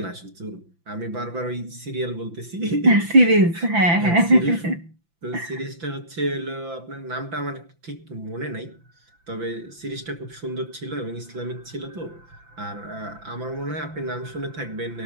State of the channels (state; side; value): late; left; 5.9 ms